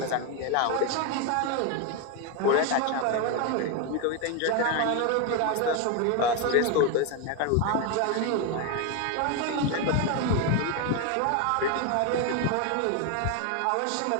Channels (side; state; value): both; different; correlation 0.02